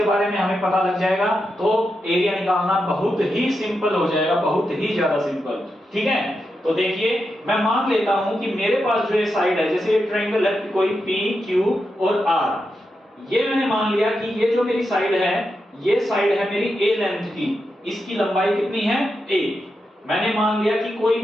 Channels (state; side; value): normal; both; correlation 0.87